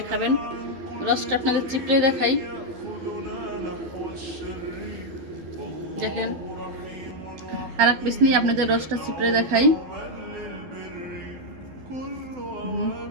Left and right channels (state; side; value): late; left; 12 ms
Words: খাবেন। রসটা আপনাদের চিপড়ে দেখাই, দেখেন। আর এক পিস নিয়ে আপনাদের রসটা চিপড়ে দেখাই।